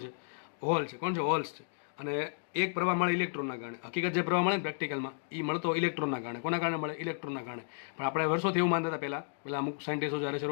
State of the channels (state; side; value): silent; right; digital silence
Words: છે? હોલ છે. કોણ છે? હોલ્સ છે. અને એક પ્રવાહ મળે ઇલેક્ટ્રોનના કારણે. હકીકત જે પ્રવાહ મળે ને પ્રેક્ટિકલમાં એ મળતો ઇલેક્ટ્રોનના કારણે. કોના કારણે મળે? ઇલેક્ટ્રોનના કારણે. પણ આપણે વર્ષોથી એવું માનતા હતા પહેલા અમુક સાયન્ટિસ્ટો જ્યારે